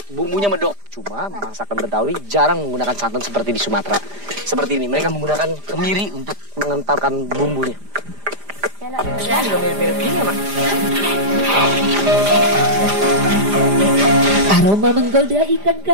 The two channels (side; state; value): left; late; 5.0 ms